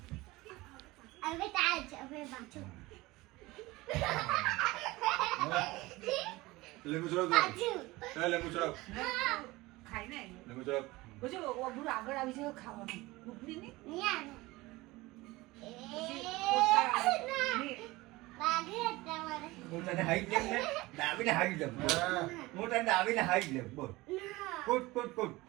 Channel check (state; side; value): quieter; left; 20.5 dB